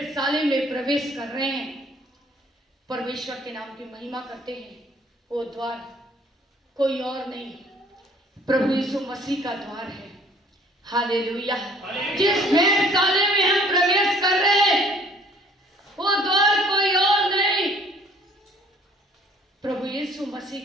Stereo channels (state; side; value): normal; both; correlation 0.56